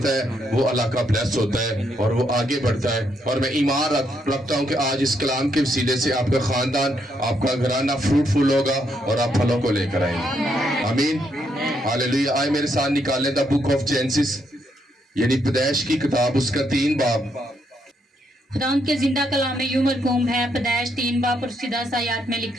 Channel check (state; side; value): normal; both; correlation 0.76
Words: ہے، وہ علاقہ بلیس ہوتا ہے اور وہ آگے بڑھتا ہے۔ اور میں ایمان رکھتا ہوں کہ آج اس کلام کے وسیلے سے آپ کا خاندان، آپ کا گھرانہ فروٹفل ہوگا اور آپ پھلوں کو لے کر آئیں گے۔ آمین، ہاللیلویہ۔ آئے میرے ساتھ نکالیں دا بک آف جینسس، یعنی پیدائش کی کتاب، اس کا 3 باب۔ خداوند کے زندہ کلام میں یوں مرقوم ہے، پیدائش 3 باب اور 10 آیات میں